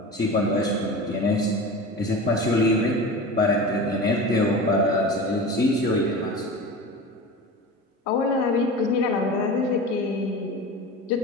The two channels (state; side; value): normal; both; correlation 0.32